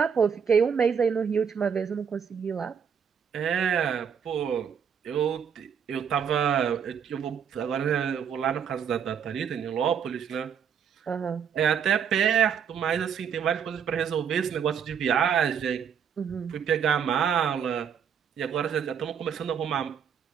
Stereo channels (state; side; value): quieter; left; 7.5 dB